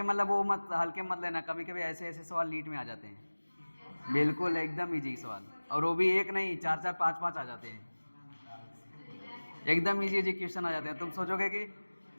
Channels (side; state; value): both; inverted; correlation -1.00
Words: मतलब वो मत हल्के मत लेना, कभी कभी ऐसे ऐसे सवाल नीट में आ जाते हैं, बिल्कुल एकदम इजी सवाल, और वो भी एक नहीं 4-4 5-5 आ जाते हैं, एकदम इजी इजी क्वेश्चन आ जाते हैं। तुम सोचोगे कि